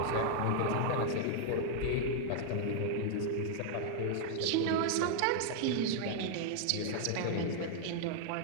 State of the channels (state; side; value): different; both; correlation -0.01